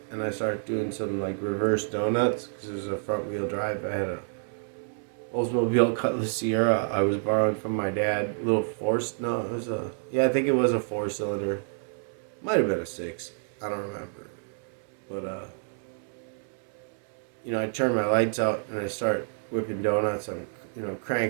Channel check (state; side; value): silent; left; 59 dB below the other